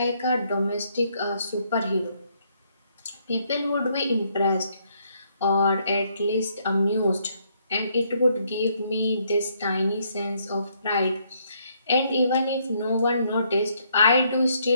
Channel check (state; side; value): inverted; both; correlation -0.71